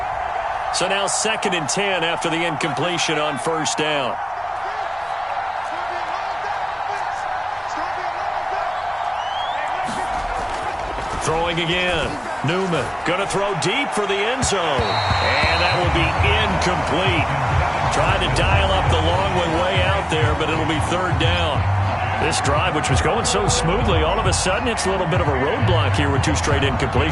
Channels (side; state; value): both; identical; correlation 1.00